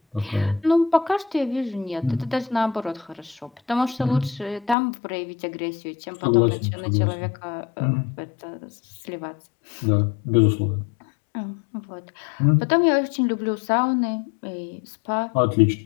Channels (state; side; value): drops out; right; at 4.8 s